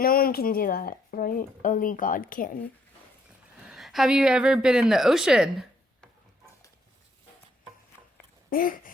one can do that, right? Only God can. Have you ever been in the ocean? Like,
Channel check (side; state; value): both; normal; correlation 0.70